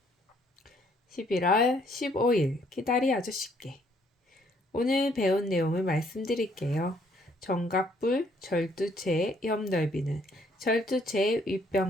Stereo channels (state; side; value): normal; both; correlation 0.66